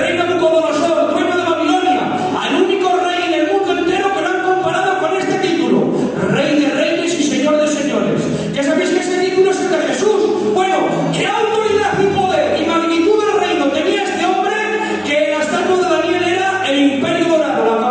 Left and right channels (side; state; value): both; identical; correlation 1.00